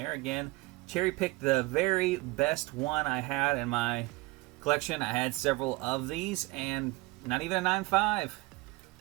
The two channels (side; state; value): left; quieter; 23.1 dB